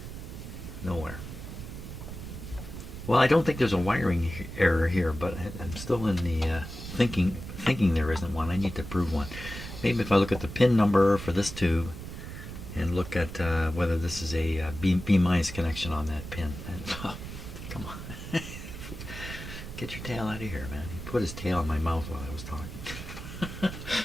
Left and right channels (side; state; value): right; noise; rumble, 10 dB below the sound